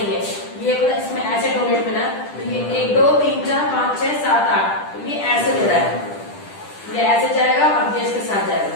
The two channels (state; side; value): late; right; 10 ms